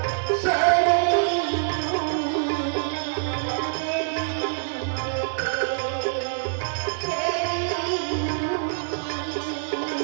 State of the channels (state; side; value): silent; left; digital silence